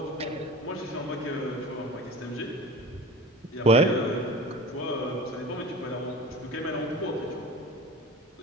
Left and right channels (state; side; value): normal; both; correlation 0.36